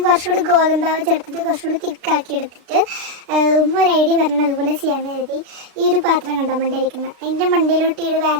കുറച്ചുകൂടി ഗോതമ്പാവ് ചേർത്തിട്ട് കുറച്ചുകൂടി തിക്കാക്കി എടുത്തിട്ട് ഒരു ഐഡിയ പറഞ്ഞാൽ അതുപോലെ ചെയ്യാമെന്ന് കരുതി ഈ ഒരു പാത്രം കണ്ടോ മണ്ടയിരിക്കുന്നത്, അതിൻ്റെ മണ്ടയിലോട്ട് ഈ ഒരു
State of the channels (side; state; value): left; late; 36 ms